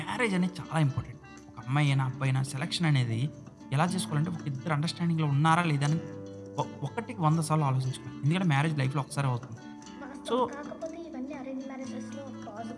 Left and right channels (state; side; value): identical; both; correlation 1.00